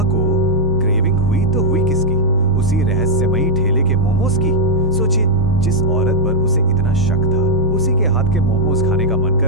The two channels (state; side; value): normal; both; correlation -0.05